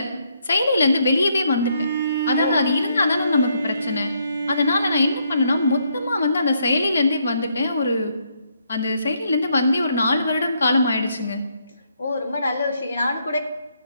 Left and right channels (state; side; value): inverted; both; correlation -0.74